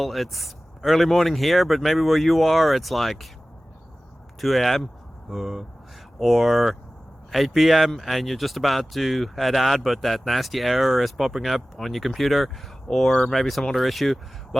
it's early morning here, but maybe where you are it's like 2 a.m. or 8 p.m. and you're just about to head out, but that nasty error is popping up on your computer, or maybe some other issue.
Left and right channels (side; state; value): both; normal; correlation 0.97